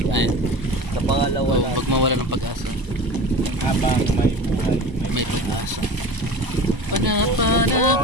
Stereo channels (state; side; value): late; left; 1.0 ms